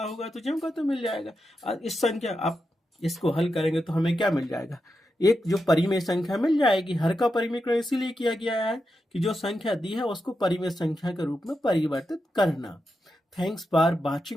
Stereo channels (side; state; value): both; normal; correlation 0.87